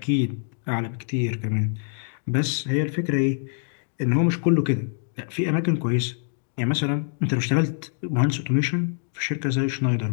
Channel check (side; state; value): right; silent; digital silence